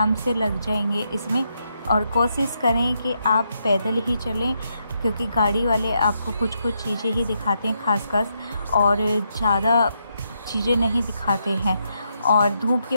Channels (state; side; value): inverted; both; correlation -0.80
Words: से लग जाएंगे इसमें। और कोशिश करें कि आप पैदल ही चलें, क्योंकि गाड़ी वाले आपको कुछ कुछ चीज़ें ही दिखाते हैं खासकर, और ज़्यादा चीज़ें नहीं दिखाते हैं। और धूप